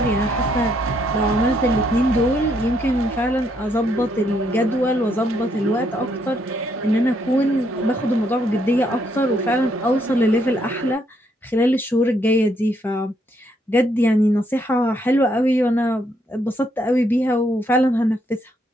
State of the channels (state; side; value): normal; both; correlation 0.73